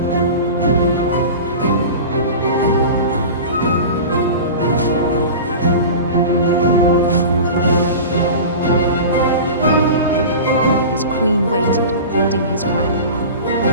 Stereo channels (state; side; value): inverted; both; correlation -0.33